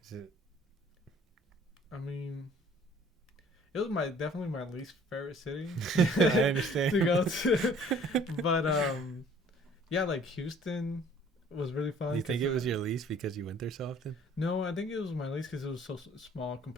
Is it? I mean, it was definitely my least favorite city. I understand. To go to, but yeah, like Houston was really fun. Do you think 'cause, it was your least because you went there so often? No, I think it was my least because it was so small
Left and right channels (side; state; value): both; normal; correlation 0.54